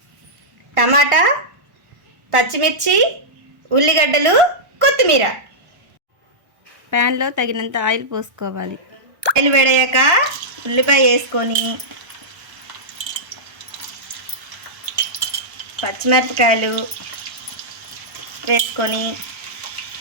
టమాటా, పచ్చిమిర్చి, ఉల్లిగడ్డలు, కొత్తిమీర. ప్యాన్లో తగినంత ఆయిల్ పోసుకోవాలి. ఆయిల్ వేడయ్యాక ఉల్లిపాయ వేసుకొని పచ్చిమిరపకాయలు వేసుకొని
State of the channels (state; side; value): late; left; 1.1 ms